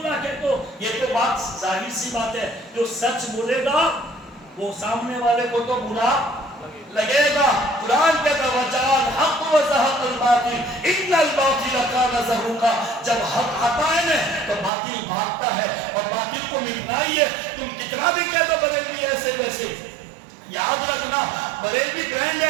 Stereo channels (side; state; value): left; drops out; at 14.7 s